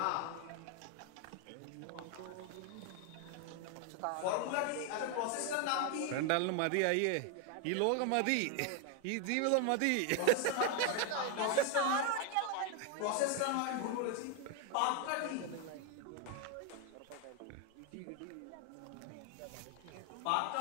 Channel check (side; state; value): both; different; correlation 0.01